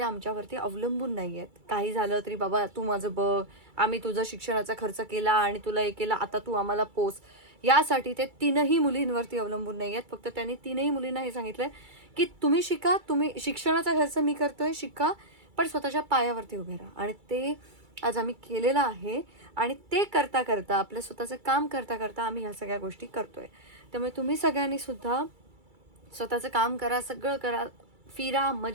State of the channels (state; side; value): late; left; 2.3 ms